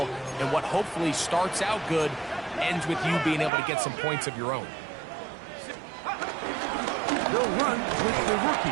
and what hopefully starts out good ends with you being able to get some points of your own. They'll run with the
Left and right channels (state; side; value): drops out; left; at 3.5 s